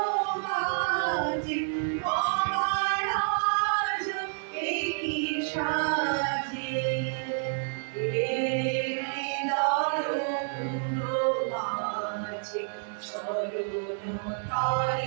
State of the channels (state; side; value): silent; left; digital silence